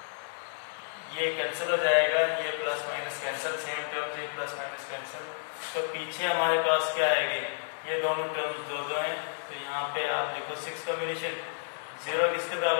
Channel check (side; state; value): right; silent; 57 dB below the other